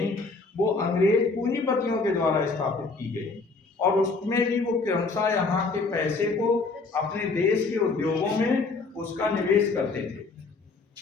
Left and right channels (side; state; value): right; quieter; 3.9 dB